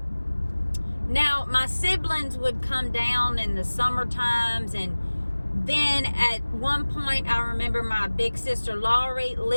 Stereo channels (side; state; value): both; inverted; correlation -1.00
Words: Now, my siblings would come down in the summer times, and then at one point, I remember my big sister Laurie